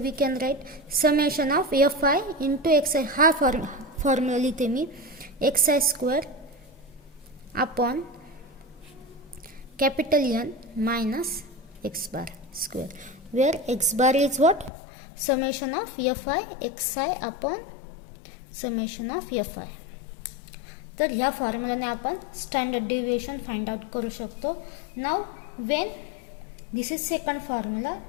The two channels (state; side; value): drops out; right; at 14.7 s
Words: we can write summation of fi into xi. हा फॉर्म्युला लिहिते मी xi square upon capital N minus x bar square where x bar is what summation of fi xi अपॉन summation of fi. तर ह्या फॉर्म्युलाने आपण standard deviation find out करू शकतो. Now Wien this is second formula.